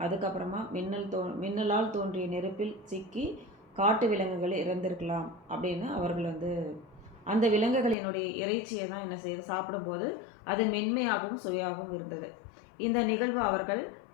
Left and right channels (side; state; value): right; drops out; at 8.0 s